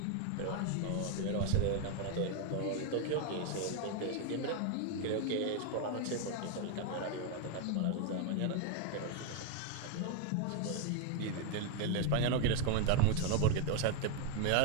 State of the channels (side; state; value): both; different; correlation 0.01